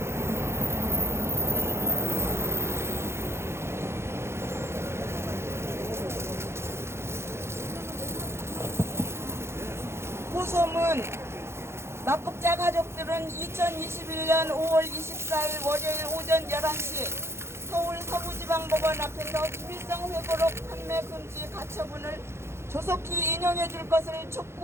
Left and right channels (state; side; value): late; left; 0.12 ms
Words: 호소문 납북자 가족들은 2021년 5월 24일 월요일 오전 11시 서울 서부지방법원 앞에서 김일성 회고록 판매 금지 가처분을 조속히 인용해 줄 것을